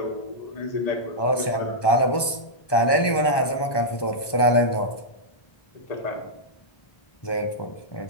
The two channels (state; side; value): late; right; 1.2 ms